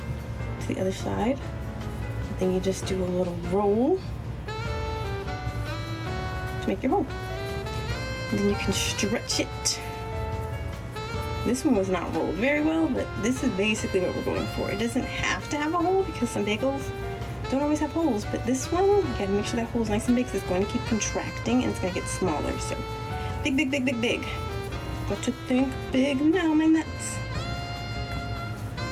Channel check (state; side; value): identical; both; correlation 1.00